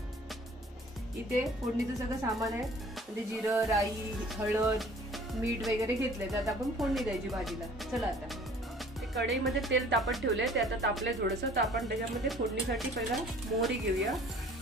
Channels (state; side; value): normal; both; correlation 0.51